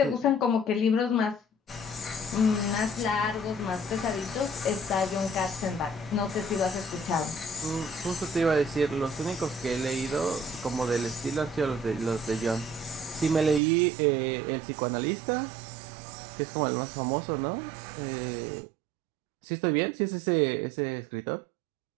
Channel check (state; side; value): drops out; left; at 13.6 s